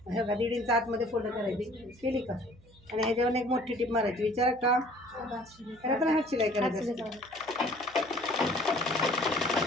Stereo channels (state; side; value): noise; right; hum, 26 dB below the sound